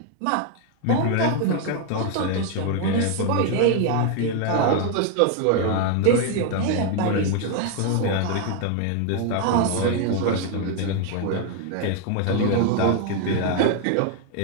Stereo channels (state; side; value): different; both; correlation 0.01